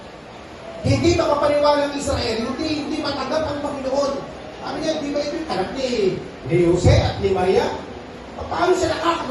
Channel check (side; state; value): both; identical; correlation 1.00